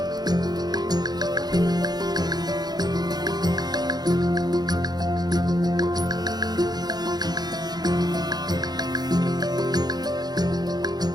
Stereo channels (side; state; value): left; late; 0.20 ms